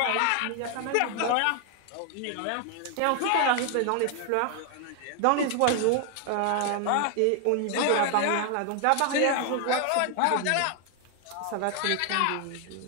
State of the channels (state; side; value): different; both; correlation 0.00